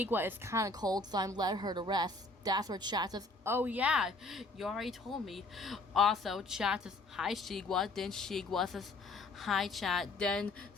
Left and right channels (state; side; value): quieter; right; 3.1 dB